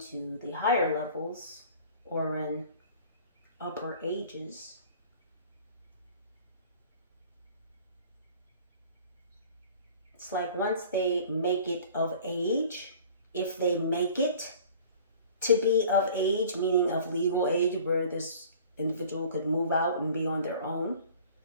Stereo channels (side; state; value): both; inverted; correlation -0.46